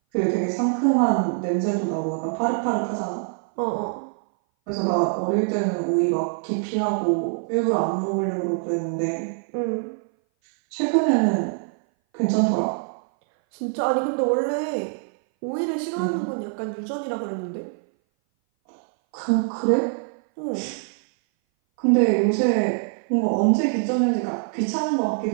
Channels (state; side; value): silent; left; 59 dB below the other